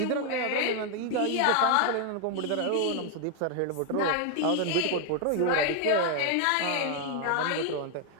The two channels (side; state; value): both; different; correlation 0.01